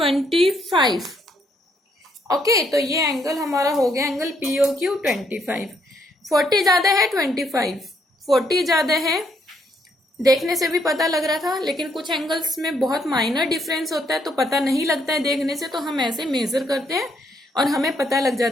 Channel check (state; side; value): normal; both; correlation 0.72